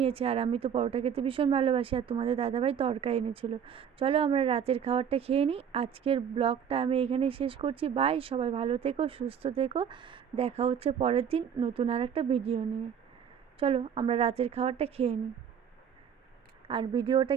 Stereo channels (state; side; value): quieter; left; 8.0 dB